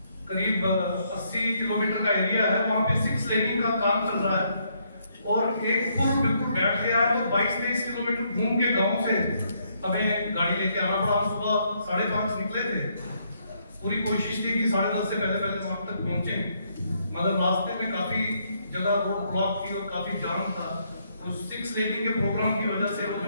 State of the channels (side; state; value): both; inverted; correlation -0.73